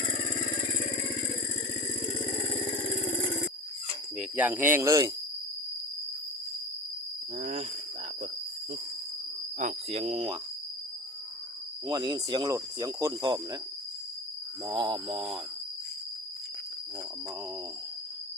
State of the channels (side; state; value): both; normal; correlation 0.31